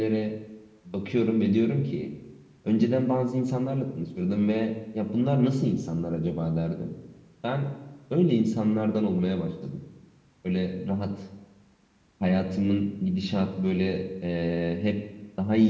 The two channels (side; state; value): both; identical; correlation 1.00